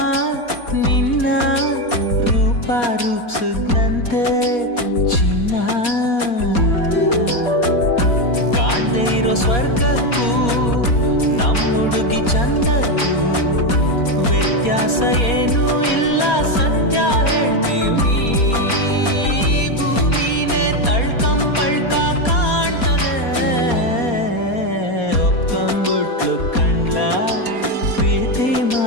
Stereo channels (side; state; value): right; late; 4.2 ms